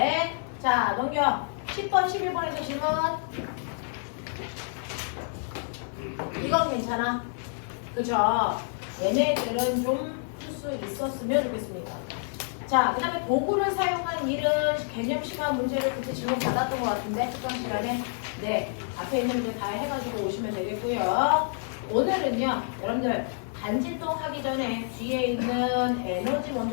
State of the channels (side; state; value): right; silent; digital silence